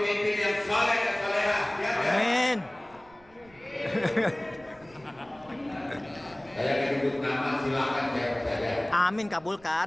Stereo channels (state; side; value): noise; right; rumble, 28 dB below the sound